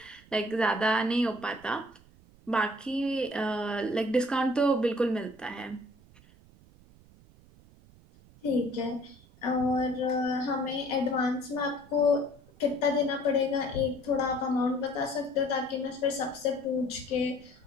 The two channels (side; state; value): right; noise; rumble, 25 dB below the sound